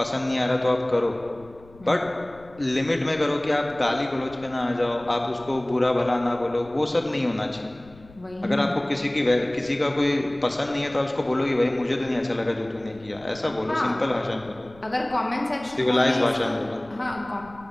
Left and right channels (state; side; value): noise; left; rumble, 23 dB below the sound